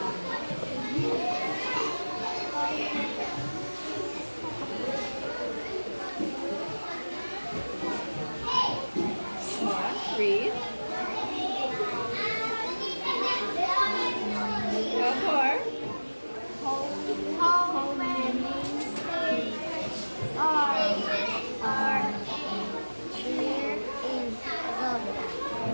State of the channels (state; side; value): inverted; both; correlation -1.00